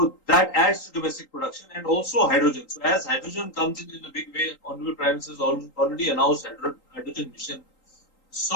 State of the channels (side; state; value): right; late; 3.8 ms